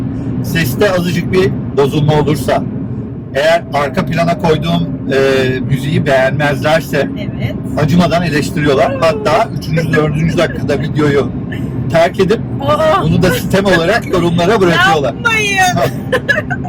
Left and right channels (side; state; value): both; identical; correlation 1.00